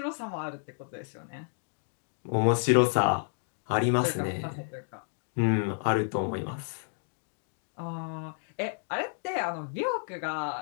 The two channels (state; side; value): silent; right; 57 dB below the other